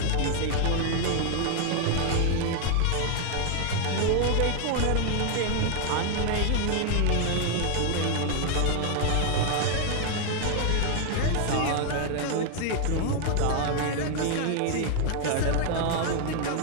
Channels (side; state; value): both; different; correlation 0.00